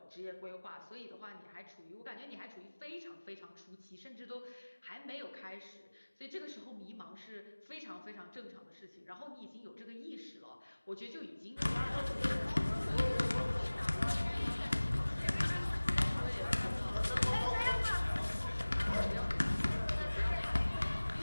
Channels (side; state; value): both; inverted; correlation -1.00